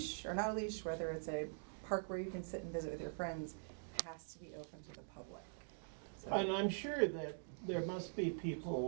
or not a leash, whether it's a park where you can sit and visit with your friends, has to be open to the public. So- and I'm sure that there must be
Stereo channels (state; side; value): silent; left; digital silence